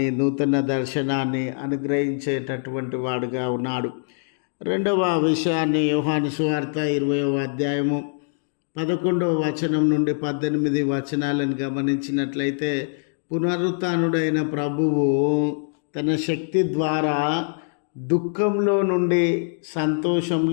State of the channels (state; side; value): silent; right; digital silence